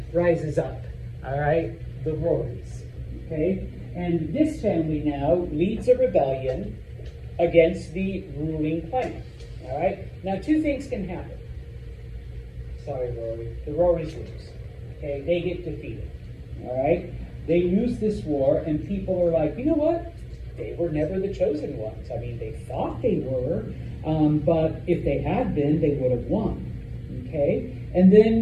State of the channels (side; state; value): both; identical; correlation 1.00